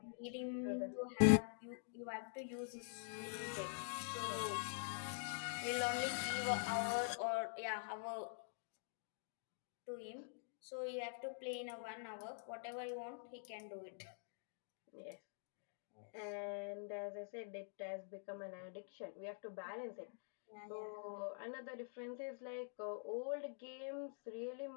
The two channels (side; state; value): right; silent; digital silence